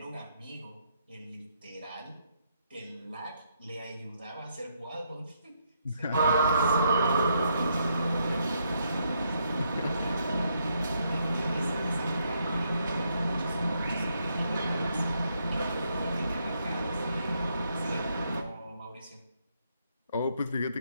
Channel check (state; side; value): inverted; both; correlation -0.76